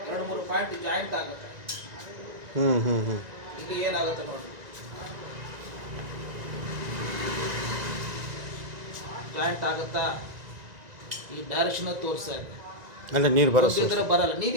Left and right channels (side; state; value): left; late; 1.9 ms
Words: ಎರಡು ಮೂರು ಪಾಯಿಂಟ್ ಜಾಯಿಂಟ್ ಆಗುತ್ತೆ. ಇದು ಏನಾಗುತ್ತೆ ನೋಡಿ, ಜಾಯಿಂಟ್ ಆಗುತ್ತಾ? ಈ ಡೈರೆಕ್ಷನ್ ತೋರಿಸ್ತಾ ಇದೆ. ಅಂದರೆ ನೀರು ಒಂದಿದ್ರೆ ಬರಲ್ಲ,